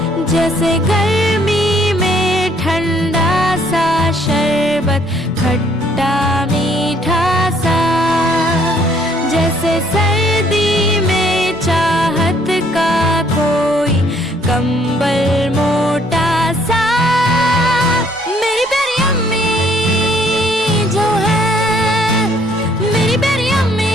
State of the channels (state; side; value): normal; both; correlation 0.64